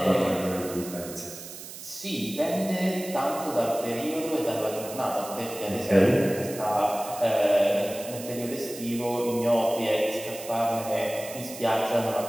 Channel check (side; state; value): right; noise; hiss, 12 dB below the sound